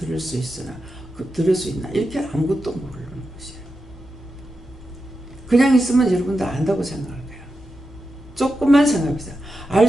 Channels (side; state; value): both; normal; correlation 0.89